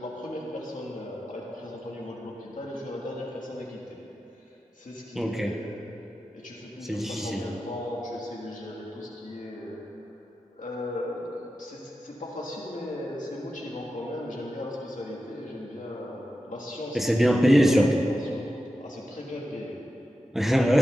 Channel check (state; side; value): normal; both; correlation 0.91